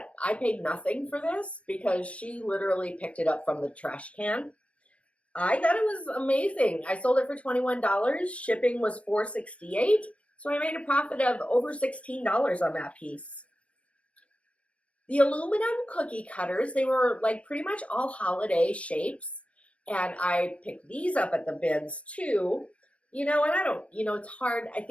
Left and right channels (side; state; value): right; late; 0.063 ms